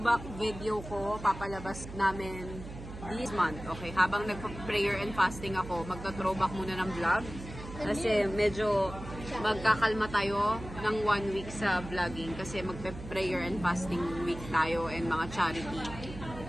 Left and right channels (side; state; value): right; noise; hum, 12 dB below the sound